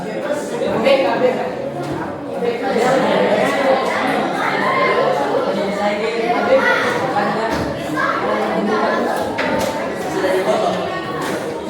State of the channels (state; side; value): identical; both; correlation 1.00